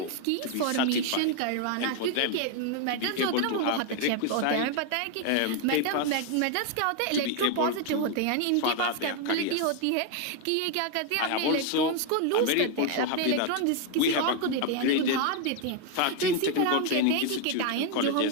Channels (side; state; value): both; different; correlation 0.00